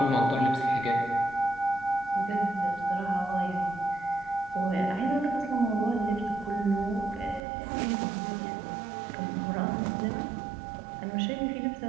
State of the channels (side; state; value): left; drops out; at 7.4 s